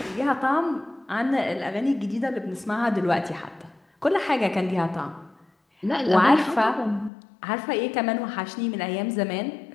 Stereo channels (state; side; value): drops out; right; at 7.1 s